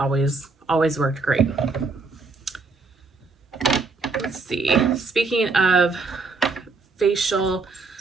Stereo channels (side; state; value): left; quieter; 4.0 dB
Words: worked great. Let's see. Speaking of facial